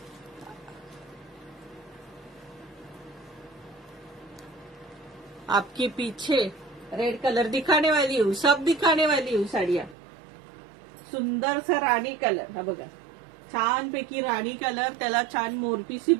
आपके पीछे रेड कलर दिखाने वाली हूँ, सब दिखाने वाली हूँ साड़ियाँ. सुंदर सा राणी कलर. हा बघा, छानपैकी राणी कलर. त्याला छान मोरपीसी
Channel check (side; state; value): left; drops out; at 10.0 s